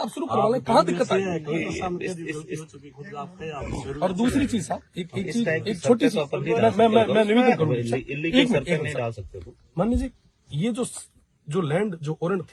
शुरू करवा लें, कहाँ दिक्कत है? और दूसरी चीज साहब, एक छोटी सी मैं निवेदन करूँगा, मान लीजिए ये जो लैंड जो ओरेंट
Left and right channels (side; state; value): both; identical; correlation 1.00